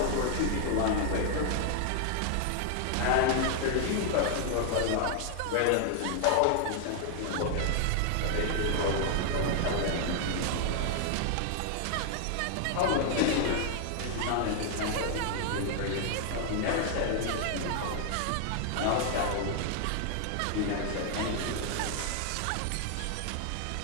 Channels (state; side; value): different; both; correlation 0.00